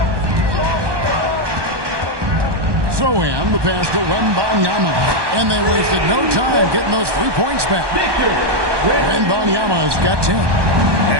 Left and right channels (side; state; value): left; late; 1.2 ms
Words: So in the pass to Wembanyama. And they wasted no time getting those 3 points back. Wembanyama has got 10.